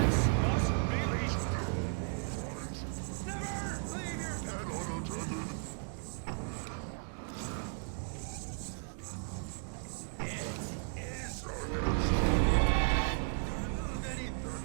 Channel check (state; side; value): silent; left; 54 dB below the other